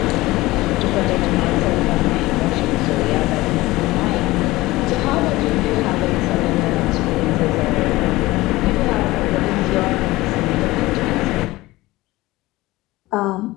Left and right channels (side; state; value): right; quieter; 19.1 dB